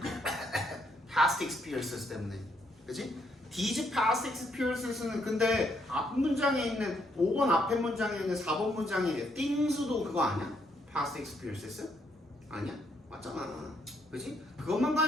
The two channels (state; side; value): normal; both; correlation 0.73